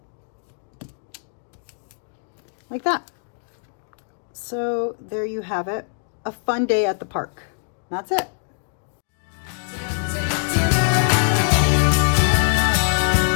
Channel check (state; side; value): silent; right; digital silence